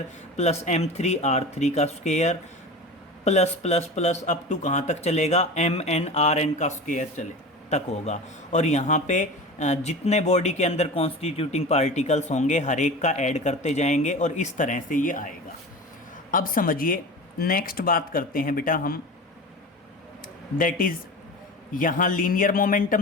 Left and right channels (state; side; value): normal; both; correlation 0.32